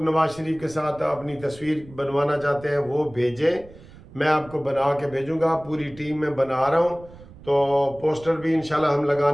نواز شریف کے ساتھ اپنی تصویر بنوانا چاہتے ہیں وہ بھیجیں، میں آپ کو بنا کے بھیجوں گا، پوری ٹیم میں بنا رہا ہوں، تو پوسٹر بھی انشاءاللہ ہم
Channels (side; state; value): right; noise; rumble, 20 dB below the sound